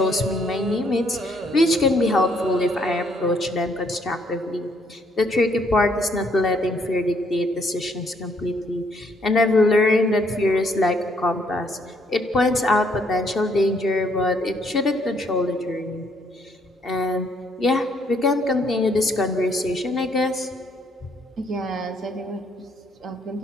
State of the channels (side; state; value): both; normal; correlation 0.68